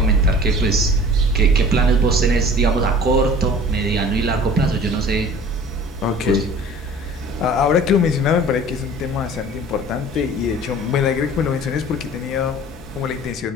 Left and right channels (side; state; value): both; normal; correlation 0.45